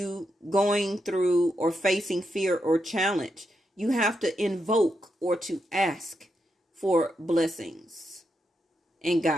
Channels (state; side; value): normal; both; correlation 0.84